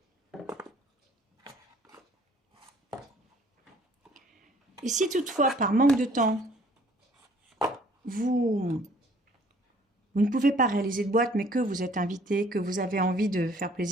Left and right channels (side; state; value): both; normal; correlation 0.57